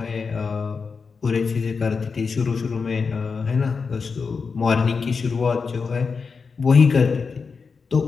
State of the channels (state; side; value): quieter; right; 5.1 dB